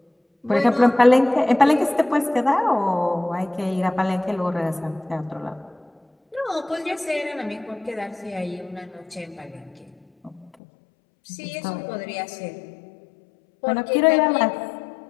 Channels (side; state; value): right; drops out; at 10.5 s